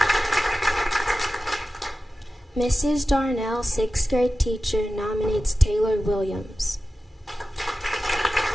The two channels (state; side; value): normal; both; correlation 0.94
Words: Mrs. Darnell, 6th grade teacher, nominates Taylor Williams.